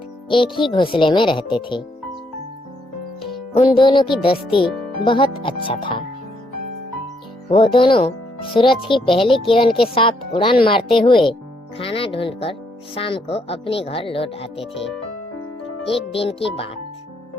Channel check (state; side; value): normal; both; correlation 0.73